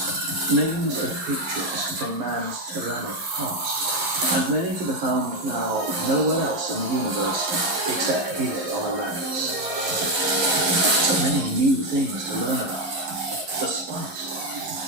Names and pictures from man's tyrannic past, and many to be found now nowhere else in the universe except here on Arrakis. So many new things to learn about. The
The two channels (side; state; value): left; late; 11 ms